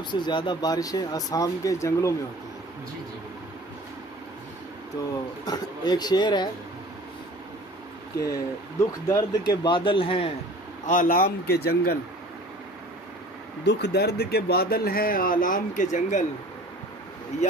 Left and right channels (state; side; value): normal; both; correlation 0.45